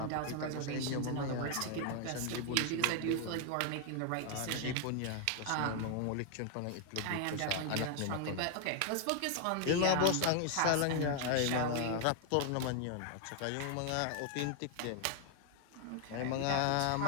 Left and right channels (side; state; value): both; different; correlation 0.00